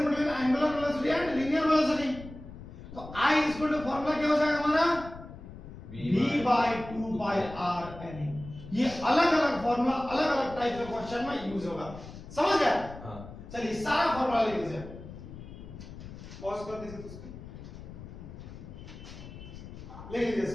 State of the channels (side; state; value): left; noise; rumble, 14 dB below the sound